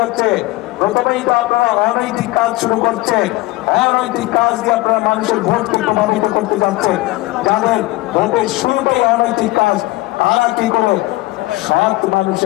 প্রথমেই তো আপনারা অনৈতিক কাজ শুরু করছেন, অনৈতিক কাজ দিয়ে আপনারা মানুষের ভোটকে প্রভাবিত করতে যাচ্ছেন। যাদের ভোটের শুরুতেই অনৈতিক কাজ, তারা কি করে সৎ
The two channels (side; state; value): right; quieter; 19.8 dB